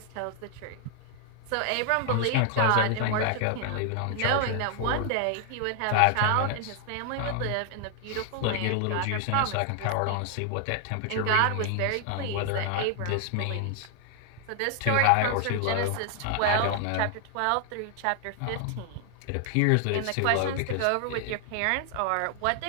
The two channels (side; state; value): both; different; correlation 0.00